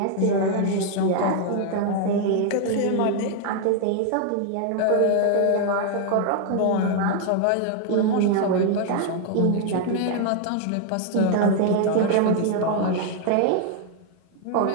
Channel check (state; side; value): different; both; correlation 0.00